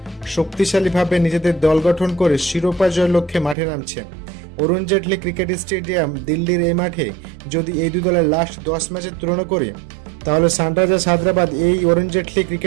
শক্তিশালীভাবে নিজেদের দল গঠন করে শিরোপা জয়ের লক্ষ্যে মাঠে নামছে। অরুণ জেটলি ক্রিকেট স্টেডিয়াম দিল্লির এই মাঠে যদি এই দুই দলের লাস্ট 10 ম্যাচের তুলনা করি তাহলে সানরাইজার্স হায়দ্রাবাদ এই অরুণ জেটলি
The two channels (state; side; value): drops out; left; at 3.6 s